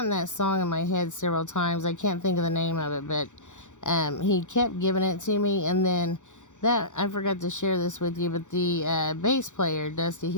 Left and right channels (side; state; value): right; late; 0.85 ms